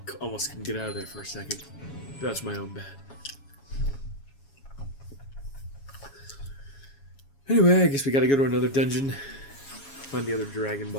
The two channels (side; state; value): right; late; 7.2 ms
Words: almost couldn't get out of there for a second. That's my own bad. Anyway, I guess we gotta go to another dungeon. Find the other Dragon